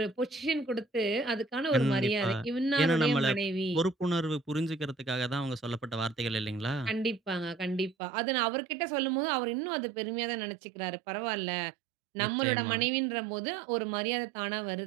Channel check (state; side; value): drops out; left; at 8.0 s